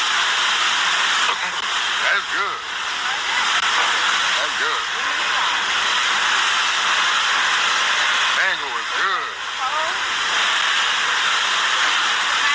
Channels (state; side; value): identical; both; correlation 1.00